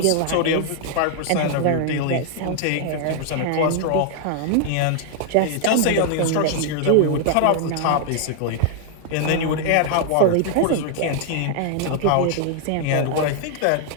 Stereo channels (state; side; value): different; both; correlation 0.00